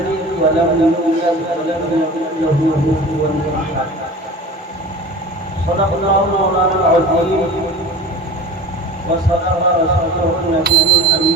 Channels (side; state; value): both; normal; correlation 0.37